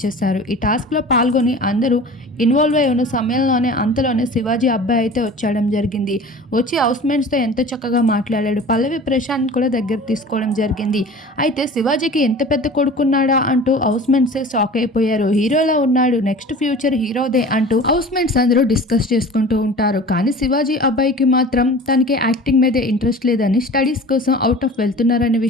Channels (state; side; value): normal; both; correlation 0.40